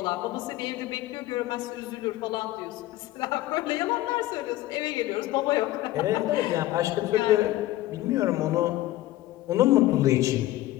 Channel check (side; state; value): right; quieter; 16.1 dB